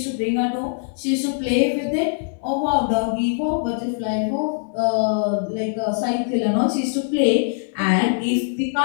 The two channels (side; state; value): right; silent; 62 dB below the other